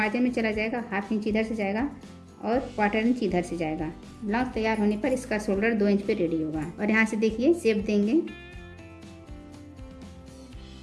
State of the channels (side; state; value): both; identical; correlation 1.00